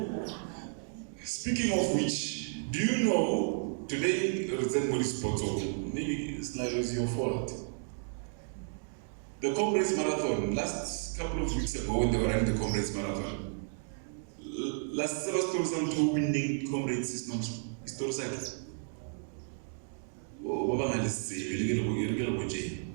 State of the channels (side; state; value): left; silent; 56 dB below the other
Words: Speaking of which, do you know today maybe it's like it was your fault. The Comrades Marathon, last couple of weeks ago when they were running the Comrades Marathon, last Sebastian two winning Comrades is not historical.